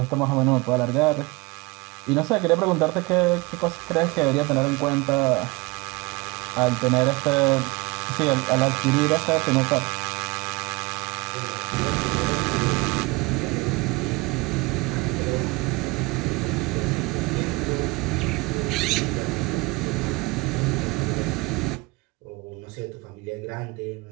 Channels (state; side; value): quieter; left; 24.3 dB